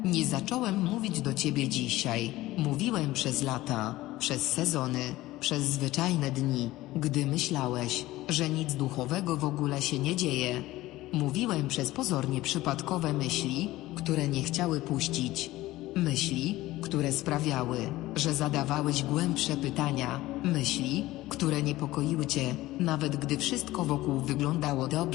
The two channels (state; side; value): quieter; right; 17.3 dB